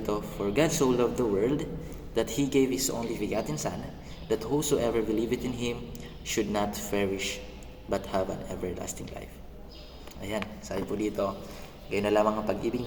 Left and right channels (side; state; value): both; identical; correlation 1.00